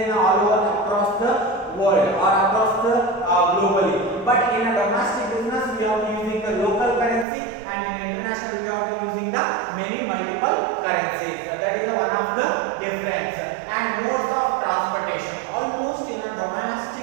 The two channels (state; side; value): drops out; left; at 7.2 s